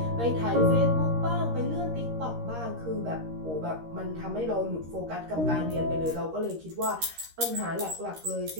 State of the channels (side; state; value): left; late; 13 ms